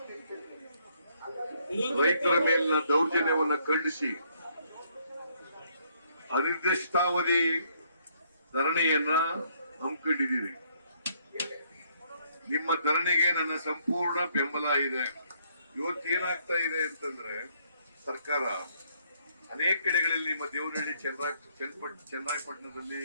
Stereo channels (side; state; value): both; inverted; correlation -0.69